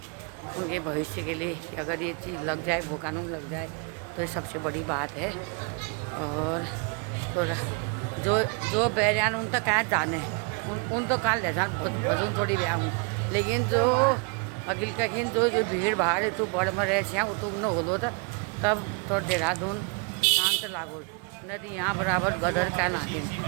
उनके भविष्य के लिए अगर ये चीज़ लग जाए, भू कानून लग जाए, तो ये सबसे बड़ी बात है। और तो जो बैरियान उन तक क्या जाने उन तो कहाँ ले जान भजन थोड़ी ब्याह हूँ, लेकिन जो अगिल कहीं जो भीड़ भाड़ है तो बड़ में रहे वो तो न होलो था, तब तो देहरादून शांत लागो। नदी यहाँ बराबर गदर का नागिन,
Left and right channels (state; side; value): quieter; left; 33.7 dB